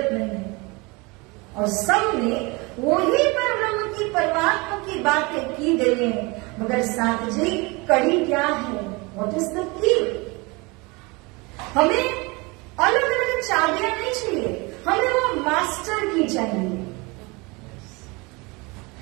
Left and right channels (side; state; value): left; quieter; 26.4 dB